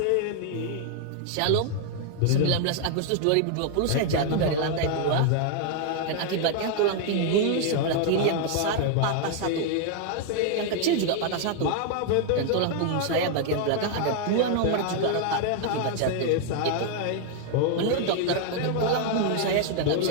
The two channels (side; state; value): both; different; correlation 0.00